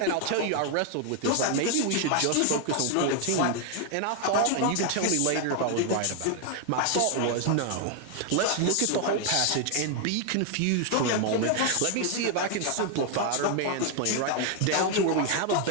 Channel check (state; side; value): different; both; correlation 0.00